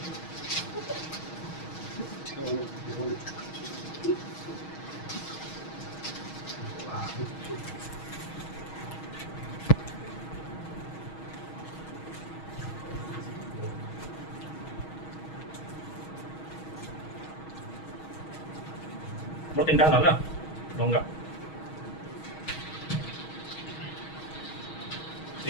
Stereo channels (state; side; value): late; right; 6.3 ms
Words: Mau tindah lah, no enggak.